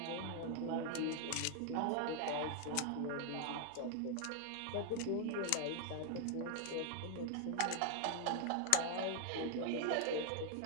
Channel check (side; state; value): both; different; correlation 0.00